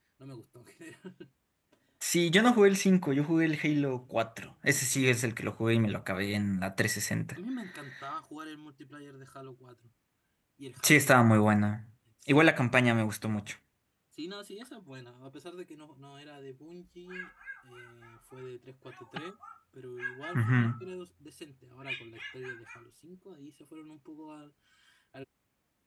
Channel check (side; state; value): both; identical; correlation 1.00